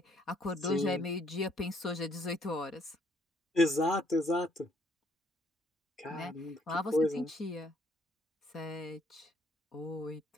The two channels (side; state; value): both; normal; correlation 0.66